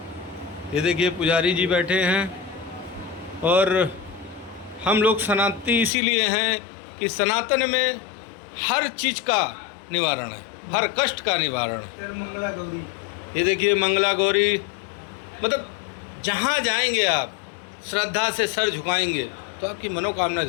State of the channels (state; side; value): drops out; right; at 5.9 s